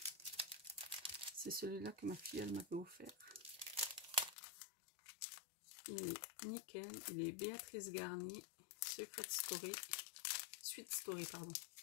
C'est celui-là que ma fille, elle m'avait offert. Il est nickel. Il est Béatrice Garnier, Secret Story, Sweet Story, pardon.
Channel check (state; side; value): drops out; right; at 4.4 s